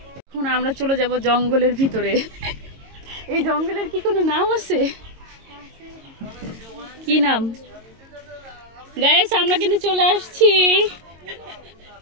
এখন আমরা চলে যাব জঙ্গলের ভিতরে। এই জঙ্গলের কি কোনো নাম আছে? কি নাম? গাইস আমরা কিন্তু চলে আসছি।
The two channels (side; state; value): left; late; 22 ms